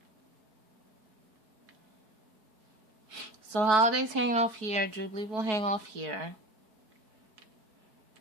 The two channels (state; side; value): late; left; 4.6 ms